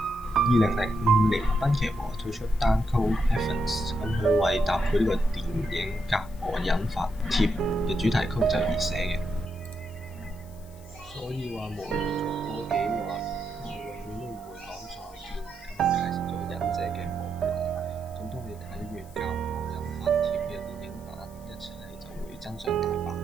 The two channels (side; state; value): left; noise; hiss, 25 dB below the sound